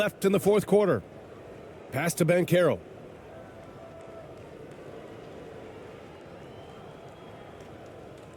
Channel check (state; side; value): identical; both; correlation 1.00